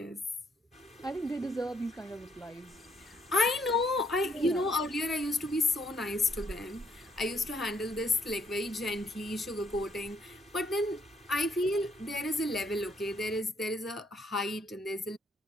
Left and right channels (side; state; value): both; normal; correlation 0.69